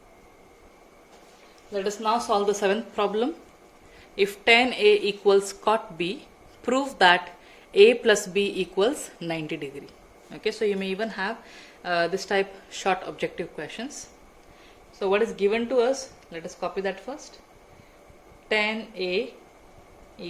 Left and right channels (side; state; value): both; identical; correlation 1.00